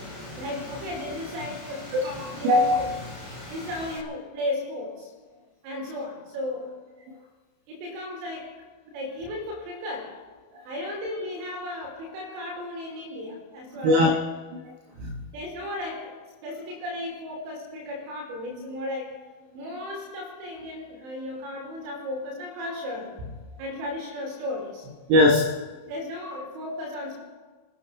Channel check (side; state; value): left; late; 31 ms